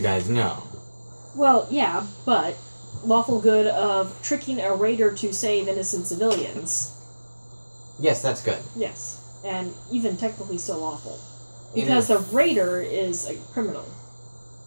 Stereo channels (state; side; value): inverted; both; correlation -1.00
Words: guys know. Well, yeah, but lawful good of tricking a raider to save innocent civilians. Yes, that's good. Yes, and even technically still lawful. Because the raider is a criminal.